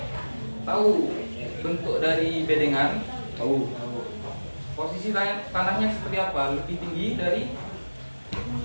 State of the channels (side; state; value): both; inverted; correlation -1.00